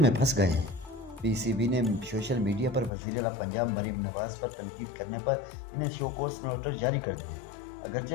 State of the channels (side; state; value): right; drops out; at 2.9 s